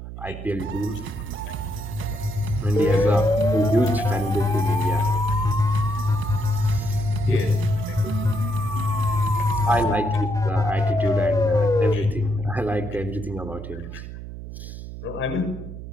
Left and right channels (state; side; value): noise; right; hum, 11 dB below the sound